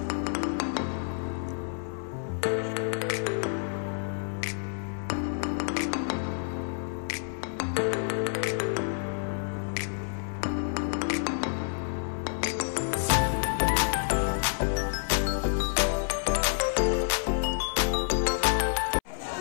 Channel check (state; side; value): silent; right; 59 dB below the other